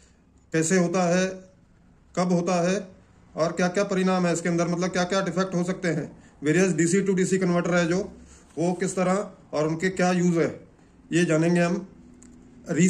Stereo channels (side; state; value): both; identical; correlation 1.00